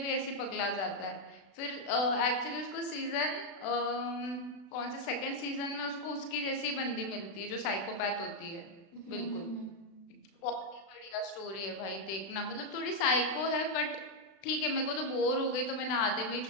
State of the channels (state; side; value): late; right; 36 ms